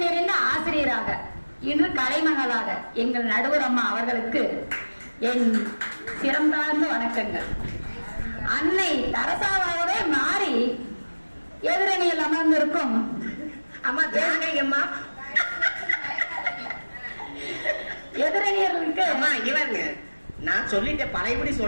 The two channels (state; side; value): inverted; both; correlation -1.00